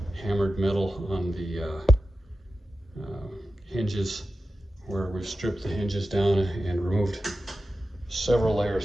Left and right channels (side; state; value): both; normal; correlation 0.93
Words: hammered metal on the hinges, where we've stripped the hinges down and removed several